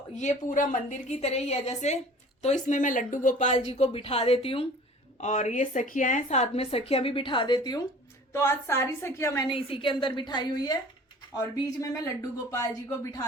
ये पूरा मंदिर की तरह ही है जैसे। तो इसमें मैं लड्डू गोपाल जी को बिठा देती हूँ, और ये सखियां हैं, साथ में सखियां भी बिठा देती हूँ। तो आज सारी सखियां मैंने इसी के अंदर बिठाई हुई है, और बीच में मैं लड्डू गोपाल जी को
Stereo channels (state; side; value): normal; both; correlation 0.46